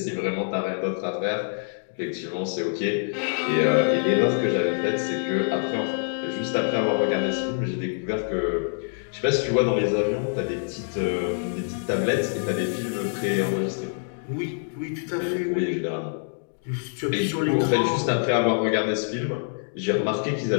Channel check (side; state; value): right; silent; digital silence